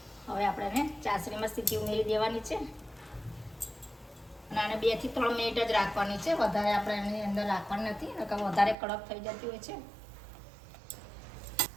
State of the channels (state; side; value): drops out; left; at 8.8 s